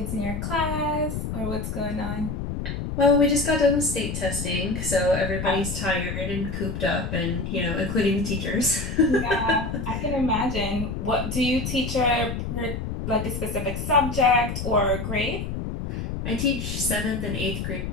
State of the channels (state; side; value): noise; left; rumble, 4 dB below the sound